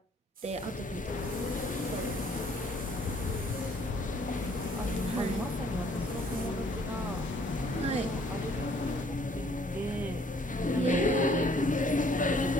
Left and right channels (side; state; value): both; normal; correlation 0.61